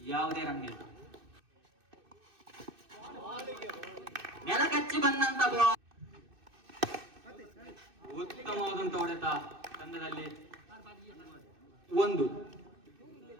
ಯಾವುದೇ ರನ್ ಇಲ್ಲ. ನೆಲಕಚ್ಚಿ ಬಂದಂತ ಬಾಲ್, ಉತ್ತಮವಾದಂತ ಹೊಡೆತ. ತಂಡದಲ್ಲಿ 1.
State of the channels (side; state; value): left; late; 2.6 ms